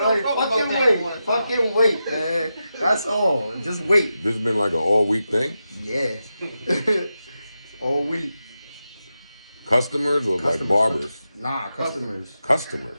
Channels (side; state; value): both; inverted; correlation -0.90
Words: like fucking wait, man. That's all. Just wait. This has been like an all-week thing? Yeah. All week. Customers or like barbers? Nah, customers.